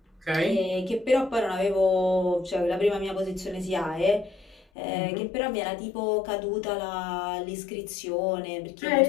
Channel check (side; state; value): right; drops out; at 4.6 s